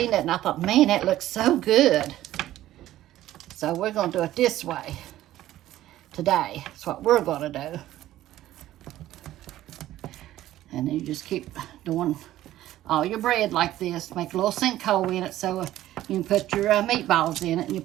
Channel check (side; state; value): left; quieter; 14.1 dB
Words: it and I thought, man, that looks so good. So we're going to do it this way today. That's what we're going to do. And then you just keep doing all your bread like this. Make a little sinkhole in it so you can put your meatballs in it and your